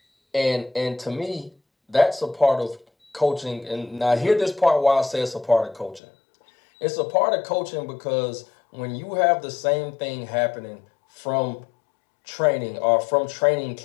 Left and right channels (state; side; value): drops out; right; at 6.0 s